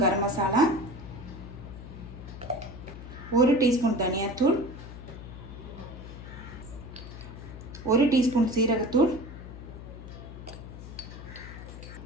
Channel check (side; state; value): left; noise; hum, 12 dB below the sound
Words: கரம் மசாலா, 1 டீஸ்பூன் தனியாத்தூள், 1 டீஸ்பூன் சீரகத்தூள்,